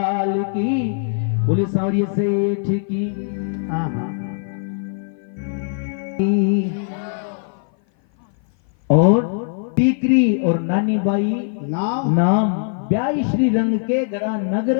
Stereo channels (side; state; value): right; silent; 56 dB below the other